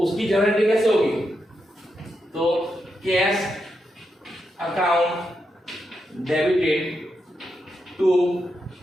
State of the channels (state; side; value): normal; both; correlation 0.84